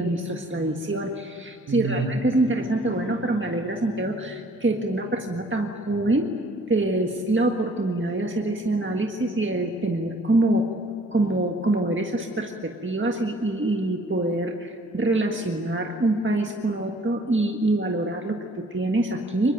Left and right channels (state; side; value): normal; both; correlation 0.57